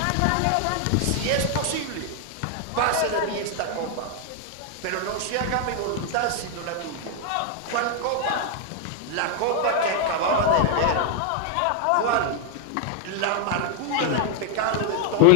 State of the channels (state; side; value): different; both; correlation 0.00